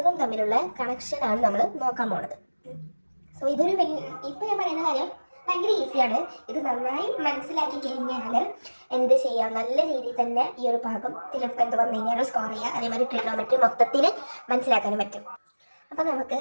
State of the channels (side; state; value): both; inverted; correlation -1.00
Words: തമ്മിലുള്ള കണക്ഷനാണ് നമ്മൾ നോക്കാൻ പോണത്. സോ ഇതൊരു ഇപ്പം ഞാൻ പറയുന്ന കാര്യം ഭയങ്കര ഈസിയാണ്. ഇത് നന്നായി മനസ്സിലാക്കി കഴിഞ്ഞാൽ എന്ത് ചെയ്യാം, നല്ല രീതിയിൽ തന്നെ ഈ ഒരു ഭാഗത്തിൽ എന്ത് വന്നു കഴിഞ്ഞാൽ സ്കോർ ചെയ്യുക. അതേമാതിരി ട്രിഗണോമെട്രി മൊത്തത്തിൽ മനസ്സിലാക്കാനും പറ്റും. അപ്പോൾ നമുക്ക്